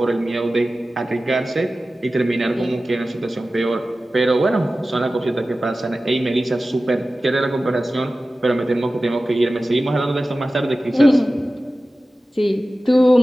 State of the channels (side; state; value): both; normal; correlation 0.95